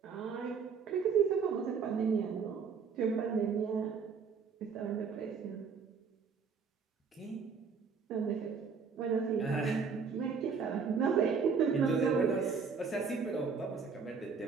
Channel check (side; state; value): left; quieter; 5.7 dB